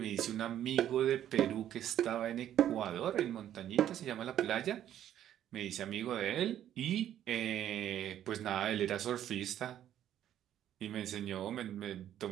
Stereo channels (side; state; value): left; quieter; 11.2 dB